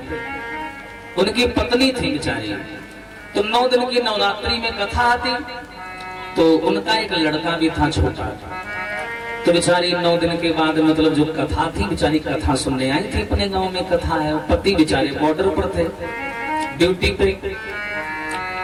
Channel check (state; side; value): identical; both; correlation 1.00